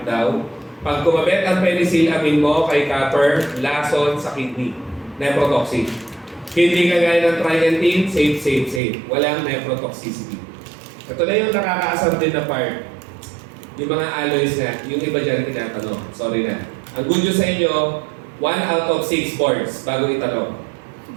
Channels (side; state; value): left; drops out; at 8.8 s